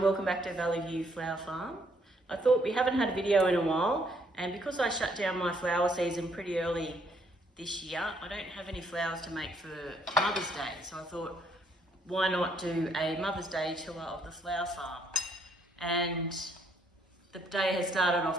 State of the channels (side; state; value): both; normal; correlation 0.69